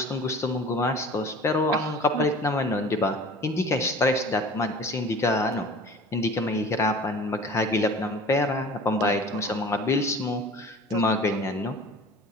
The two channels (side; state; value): both; normal; correlation 0.42